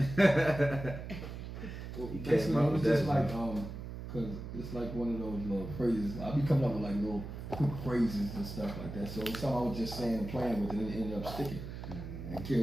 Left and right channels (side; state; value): right; noise; hum, 9 dB below the sound